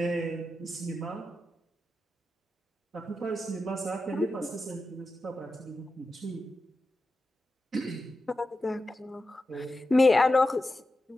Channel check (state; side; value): normal; both; correlation 0.91